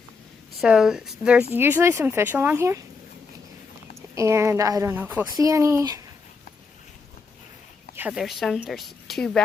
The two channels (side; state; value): right; quieter; 4.6 dB